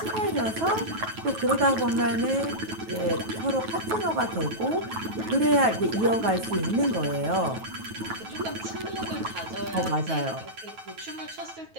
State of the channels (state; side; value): late; left; 9.2 ms